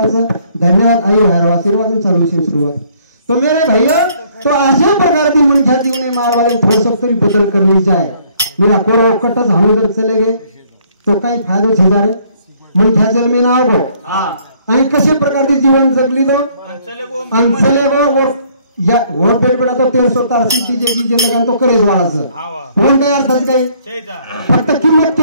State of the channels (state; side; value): inverted; both; correlation -0.63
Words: धन्यवाद आई हर आशीर्वाद चालू विषय सुरुवात तो मेरे भाइयों तो अशा प्रकार की मनुष्य जीवन में मार वाले थोड़ा सब तरी बदल कर ली जाए मेरा कोरो कटस हम उधर चले गए तो काही फायदो छे जारे मनुष्य जल में ना हो आणि कशा प्रकार की जीवन जगली तो अंचले वो और या और पेट बड़ा तो 1300 सिटी जे लगान तो करेज वाळाचं कोण काय अर्थ काय फक्त किंमत